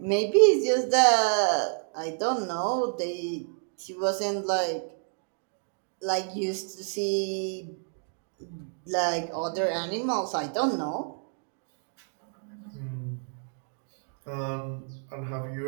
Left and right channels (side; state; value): left; silent; 58 dB below the other